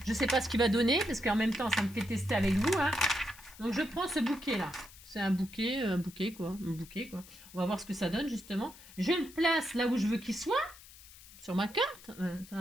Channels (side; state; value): left; noise; hiss, 20 dB below the sound